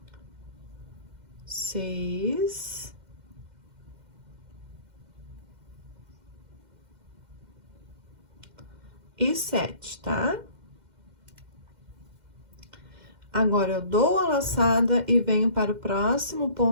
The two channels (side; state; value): left; late; 2.1 ms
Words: 6. E 7, tá? Agora, eu dou a laçada e venho para o próximo